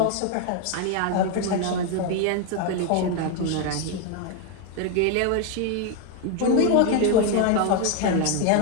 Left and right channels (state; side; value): different; both; correlation 0.01